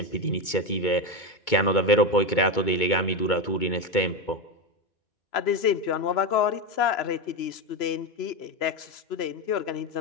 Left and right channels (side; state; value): right; late; 2.2 ms